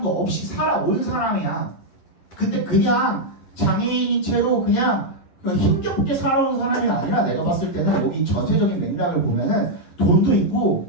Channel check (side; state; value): right; late; 12 ms